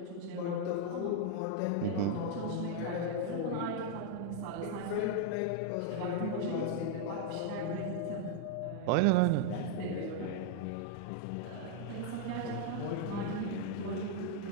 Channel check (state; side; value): different; both; correlation 0.00